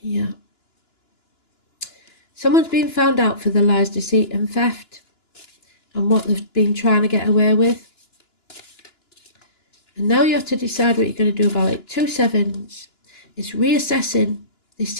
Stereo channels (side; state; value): right; late; 2.9 ms